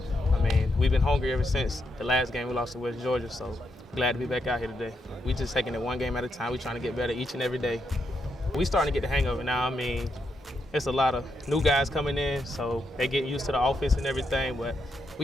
I mean, we've been hungry ever since the last game we lost to West Georgia, so glad to be back out here today. We just taking it one game at a time. We trying to get better each and every day. We starting to get the hang of it now. I mean, it's a lot of new guys coming in, so they getting used to the offense and everything, but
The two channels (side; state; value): both; normal; correlation 0.81